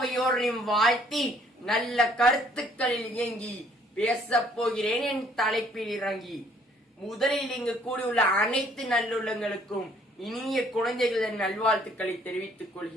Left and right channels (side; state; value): both; normal; correlation 0.62